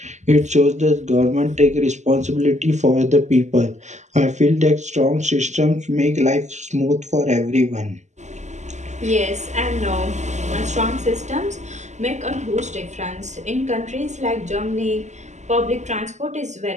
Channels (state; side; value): late; left; 0.34 ms